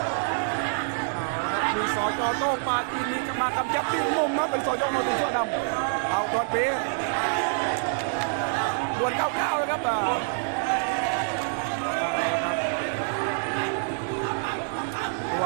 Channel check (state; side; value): silent; left; digital silence